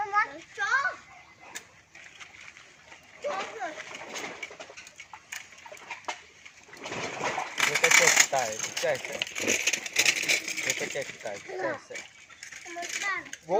nếu cái chơi tài chơi sẽ nếu cái chơi tài chơi sẽ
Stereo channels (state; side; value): identical; both; correlation 1.00